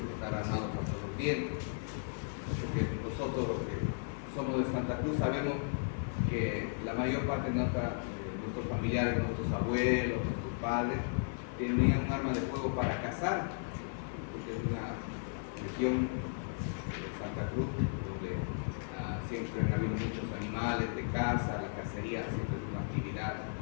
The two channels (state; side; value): silent; right; 54 dB below the other